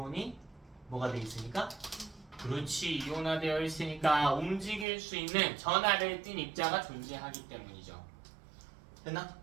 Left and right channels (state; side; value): drops out; left; at 4.9 s